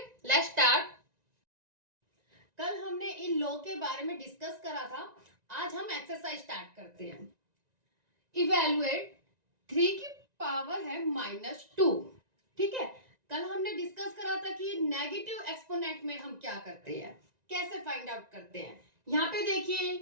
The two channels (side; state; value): left; late; 1.9 ms